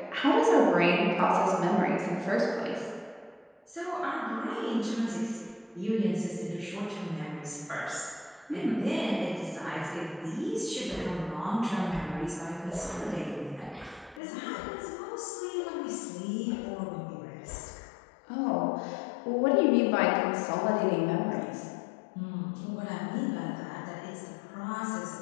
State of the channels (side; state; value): right; drops out; at 14.2 s